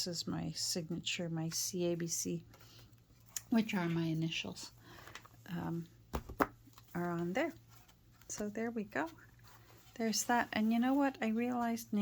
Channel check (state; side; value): identical; both; correlation 1.00